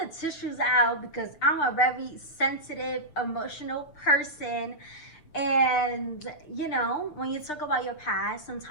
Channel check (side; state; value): right; late; 6.7 ms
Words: tissues out because I'm a very sensitive, emotional person. And, you know, when you talk about your past,